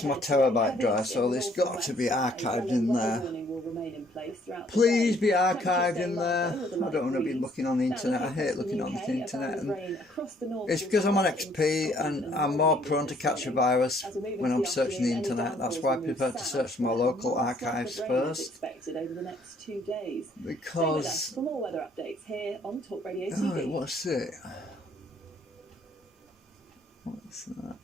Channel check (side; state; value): both; normal; correlation 0.63